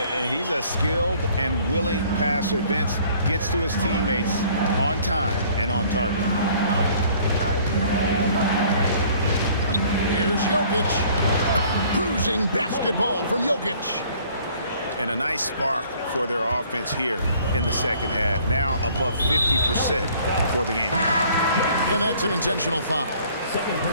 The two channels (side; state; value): both; inverted; correlation -0.56